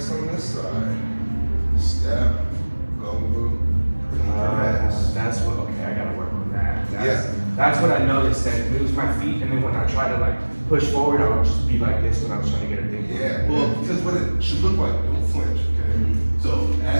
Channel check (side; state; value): both; inverted; correlation -1.00